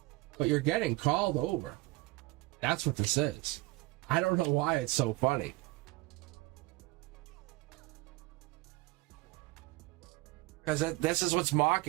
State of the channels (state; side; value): quieter; left; 21.9 dB